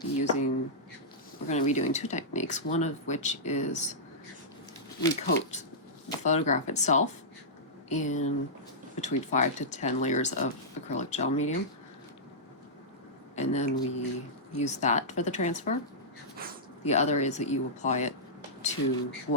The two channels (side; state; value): both; normal; correlation -0.13